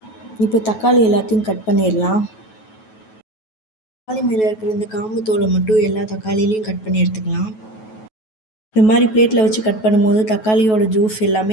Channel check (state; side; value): late; right; 9.3 ms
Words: இப்போ தக்காளி எல்லாத்தையும் கட் பண்ணிடலாம். தக்காளி மேலே இருக்கிற இந்த காம்பு தோலை மட்டும் எல்லா தக்காளிலையும் கட் பண்ணி எடுத்துக்கலாம். இந்த மாதிரி பிளேட்டில் வச்சு கட் பண்ணும்போது தக்காளியோட ஜூஸ்